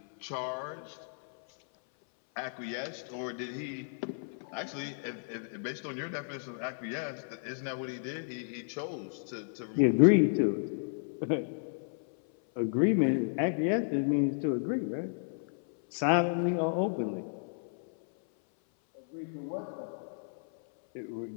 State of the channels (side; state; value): right; silent; 56 dB below the other